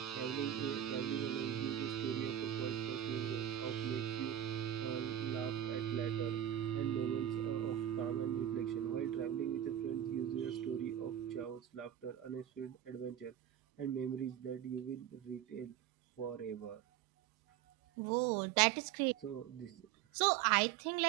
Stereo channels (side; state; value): left; quieter; 11.0 dB